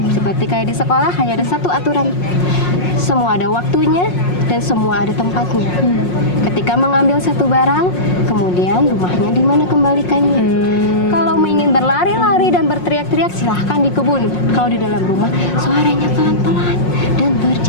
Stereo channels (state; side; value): late; right; 5.5 ms